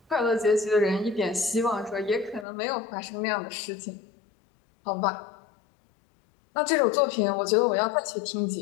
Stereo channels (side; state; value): right; drops out; at 2.5 s